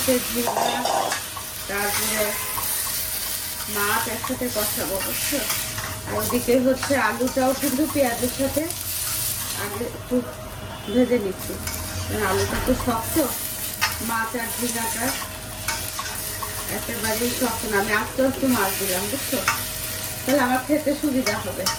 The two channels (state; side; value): identical; both; correlation 1.00